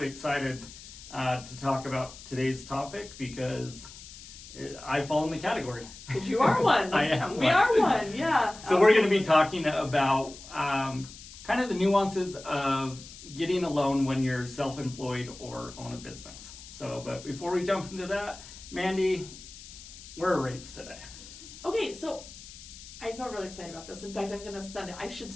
excited to talk about today's topic because I fall in the category. Because you are one. I am We one. are one, yeah. So we're going to be talking about kind of the nuances of getting a loan when you're self-employed or own a business. But before we jump into that, Mandi, where are rates today? Okay, so I feel really excited about this. In fact, I'm going to send it. I should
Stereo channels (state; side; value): noise; left; hiss, 16 dB below the sound